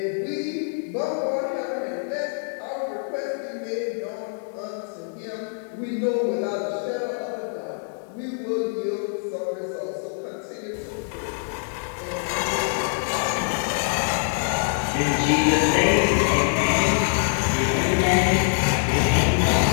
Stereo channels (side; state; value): right; silent; digital silence